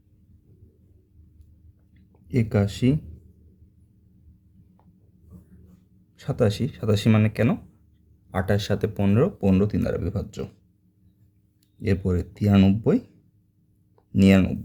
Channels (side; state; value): both; identical; correlation 1.00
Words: 81, 87, 87 মানে কেন? 28 সাথে 15, 15 3 দ্বারা বিভাজ্য। এরপরে 93,